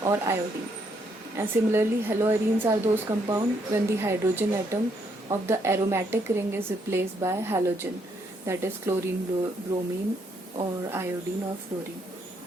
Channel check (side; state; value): both; normal; correlation 0.73